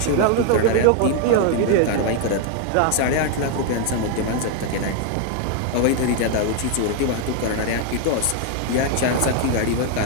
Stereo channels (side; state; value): both; different; correlation 0.00